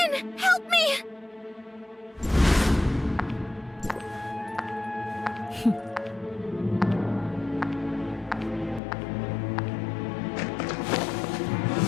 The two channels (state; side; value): drops out; right; at 8.8 s